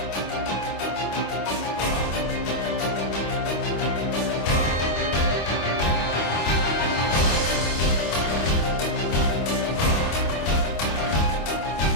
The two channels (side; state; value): right; late; 25 ms